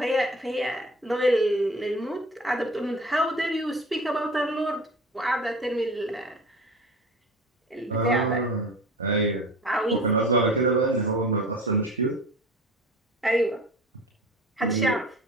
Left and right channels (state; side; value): normal; both; correlation 0.39